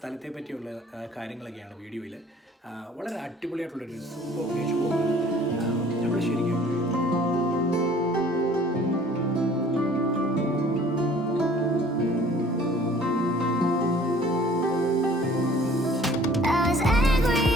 പറ്റിയുള്ള കാര്യങ്ങളൊക്കെയാണ് വീഡിയോയിൽ. വളരെ അടിപൊളിയായിട്ടുള്ളൊരു സൂപ്പർ പ്ലേസ്. നമ്മൾ ശരിക്കും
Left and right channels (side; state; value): both; normal; correlation 0.52